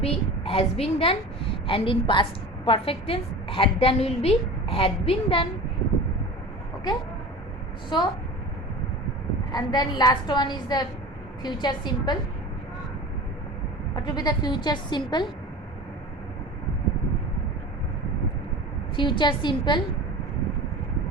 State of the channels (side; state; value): both; normal; correlation 0.35